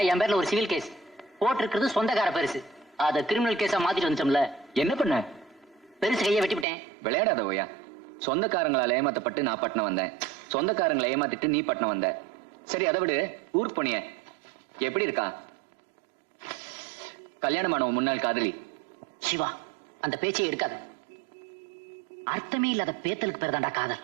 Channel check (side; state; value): left; drops out; at 6.7 s